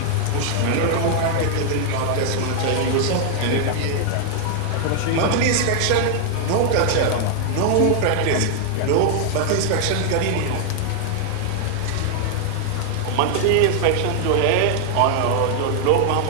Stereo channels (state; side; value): different; both; correlation 0.00